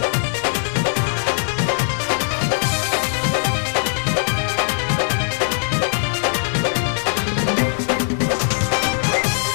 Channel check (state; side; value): silent; right; digital silence